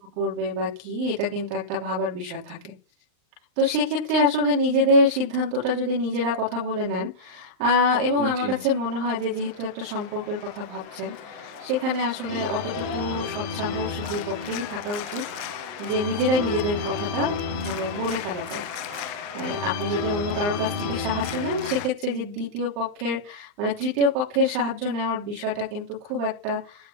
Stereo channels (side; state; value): left; late; 39 ms